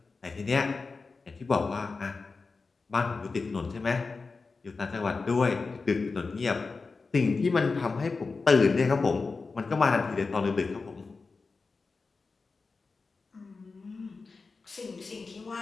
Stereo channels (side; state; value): right; quieter; 4.2 dB